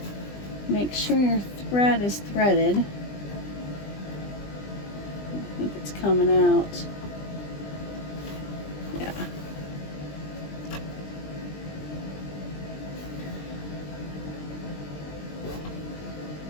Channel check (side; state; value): right; late; 20 ms